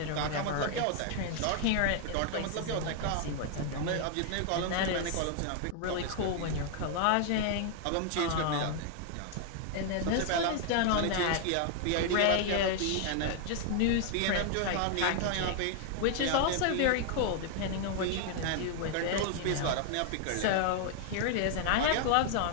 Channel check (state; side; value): different; both; correlation 0.00